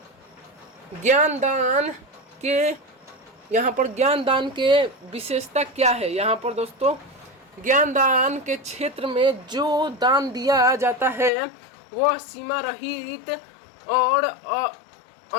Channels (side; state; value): right; drops out; at 11.3 s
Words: ज्ञानदान के, यहाँ पर ज्ञानदान के विशेषता क्या है। यहाँ पर दोस्तों ज्ञानदान के क्षेत्र में जो दान दिया जाता है वह सीमा रहित और